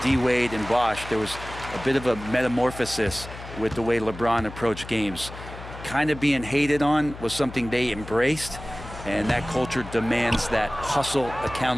D-Wade, and Bosh, there was a bit of a metamorphosis with the way LeBron approached games. Kind of being hated on was something they embraced, and that culture demands that hustle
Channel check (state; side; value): noise; left; hum, 13 dB below the sound